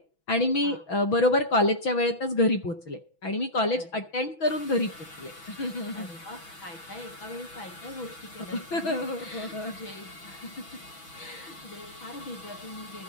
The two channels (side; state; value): right; late; 6.1 ms